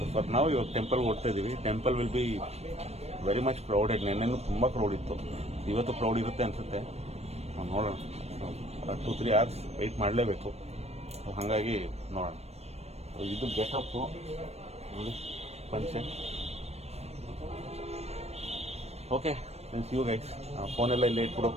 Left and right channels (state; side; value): late; left; 0.31 ms